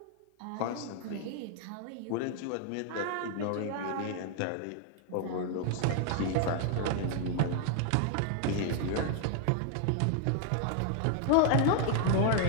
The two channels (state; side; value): different; both; correlation 0.00